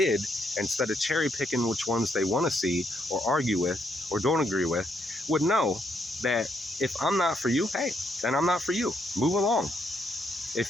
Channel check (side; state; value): both; normal; correlation 0.75